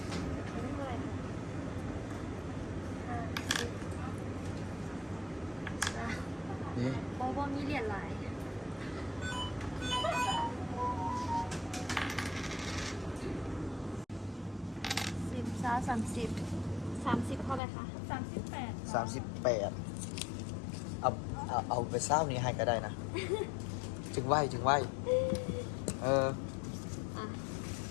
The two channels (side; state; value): right; drops out; at 17.6 s